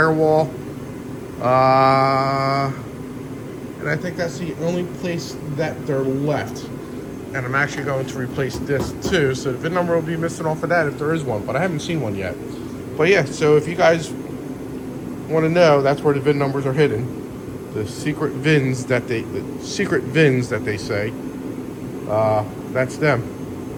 And I think that's the only place that they're left. And I'm actually going to replace this too. So the VIN number will be missing off of that if there is one, but I haven't seen one yet. But yeah, so if you guys want to know, that's where the VIN numbers are hidden. The secret VINs that they say, that's them.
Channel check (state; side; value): identical; both; correlation 1.00